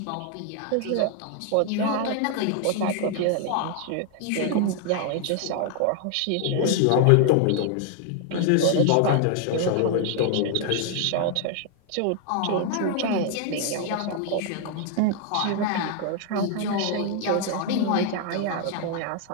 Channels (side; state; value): both; different; correlation 0.00